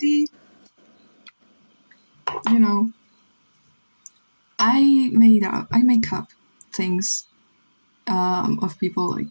you know, I make up things of people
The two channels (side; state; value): both; inverted; correlation -1.00